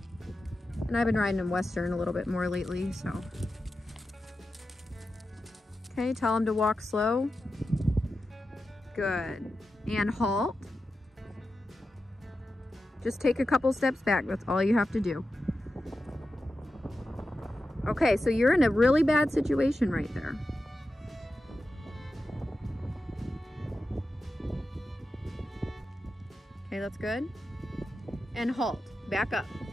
And I've been riding him Western a little bit more lately, so. Okay, tell him to walk slow. Good. And halt. Just take a couple steps back, that's all you have to do. Okay, so you're in a really bad situation right there. Okay, that's good. And halt. Back up.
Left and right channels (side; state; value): both; normal; correlation 0.91